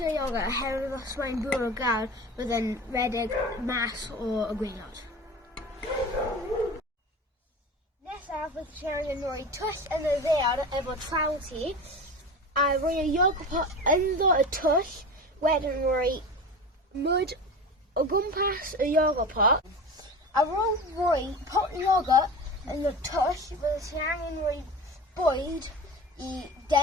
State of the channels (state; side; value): normal; both; correlation 0.32